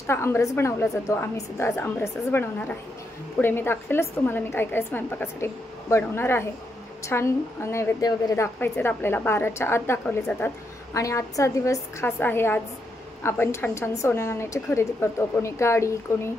आमरस बनवला जातो। आम्ही सुद्धा आज आमरसच बनवणार आहे। पुढे मी दाखवेलच तुम्हाला मी काय काय स्वयंपाकासाठी बनवणार आहे। छान नैवेद्य वगैरे दाखवायचे आपल्याला, 12च्या आत दाखवले जातात। आणि आजचा दिवस खास आहे। आज आपण छान छान सोन्या नाण्याची खरेदी करतो, कोणी गाडी, कोणी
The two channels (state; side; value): normal; both; correlation 0.80